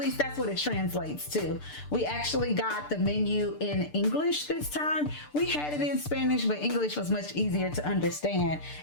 that's what it translates to. We actually got the menu in English this time. We had it in Spanish, but English was much easier to understand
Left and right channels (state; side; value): late; right; 6.8 ms